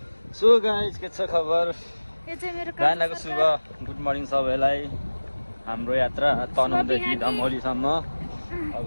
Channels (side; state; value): both; inverted; correlation -1.00